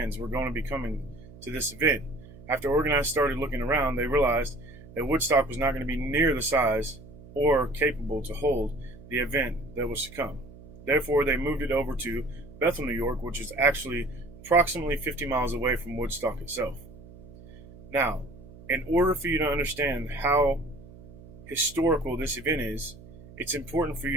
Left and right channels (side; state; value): right; noise; hum, 19 dB below the sound